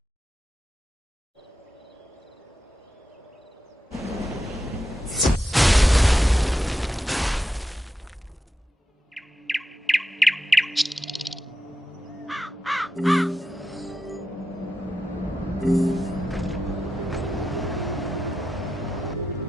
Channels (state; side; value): normal; both; correlation 0.89